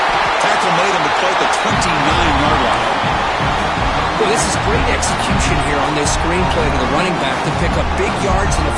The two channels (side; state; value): both; identical; correlation 1.00